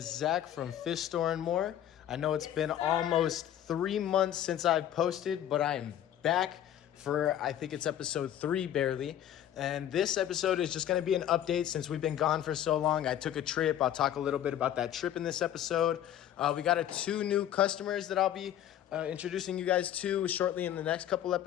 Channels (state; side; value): quieter; right; 11.1 dB